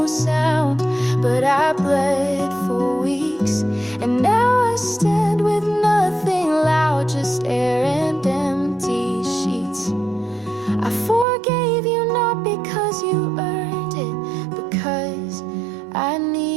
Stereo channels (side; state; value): left; drops out; at 11.2 s